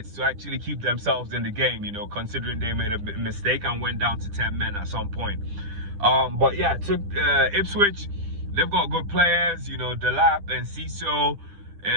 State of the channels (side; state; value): left; late; 10 ms